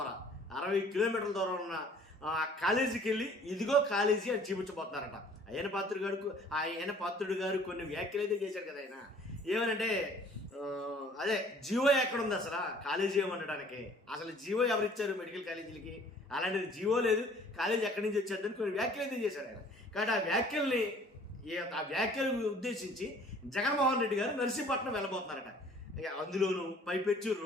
దూరం ఉన్న కాలేజీకి వెళ్ళి ఇదిగో కాలేజీ అని చూపించబోతున్నారట. అయ్యన్న పాత్రుడు గారు కొన్ని వ్యాఖ్యలు అయితే చేశారు కదా. ఆయన ఏమనంటే అదే జీవో ఎక్కడ ఉంది అసలు కాలేజీ ఏమనడానికి, అసలు జీవో ఎవరు ఇచ్చారు మెడికల్ కాలేజీలకి, అలాంటిది జీవో లేదు, కాలేజీ ఎక్కడి నుంచి వచ్చేద్దని కొన్ని వ్యాఖ్యలు అయితే చేశారు ఆయన. కాబట్టి ఆ వ్యాఖ్యలు ఉద్దేశించి జగన్మోహన్ రెడ్డి గారు నర్సీపట్నం వెళ్ళబోతున్నారట. అందులోనూ పైపెచ్చు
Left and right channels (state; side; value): normal; both; correlation 0.54